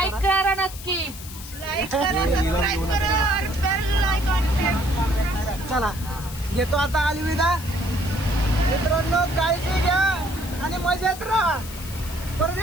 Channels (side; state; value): left; noise; hiss, 14 dB below the sound